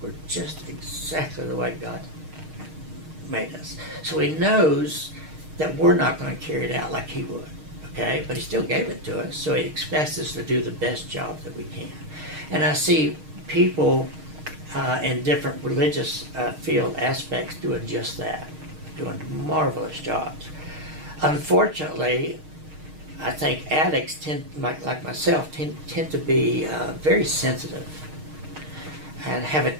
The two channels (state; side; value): late; left; 6.5 ms